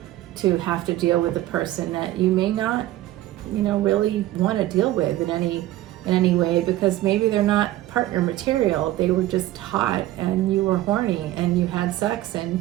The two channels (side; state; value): left; quieter; 15.2 dB